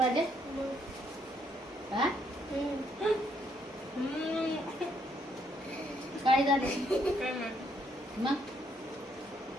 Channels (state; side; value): normal; both; correlation 0.72